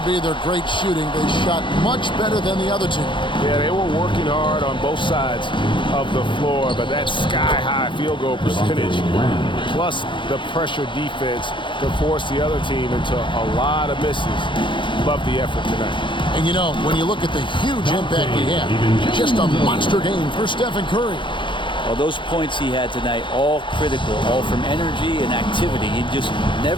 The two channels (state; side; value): late; right; 0.23 ms